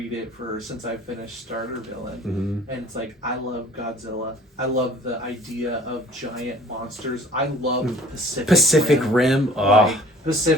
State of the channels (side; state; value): both; normal; correlation 0.51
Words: it since I finished Starter Villain, and it's like, I love Godzilla. I love the idea of giant monsters. I love Pacific Rim. Oh. Like,